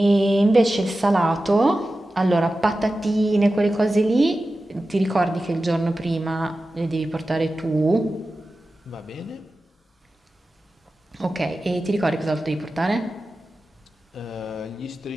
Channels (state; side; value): normal; both; correlation 0.94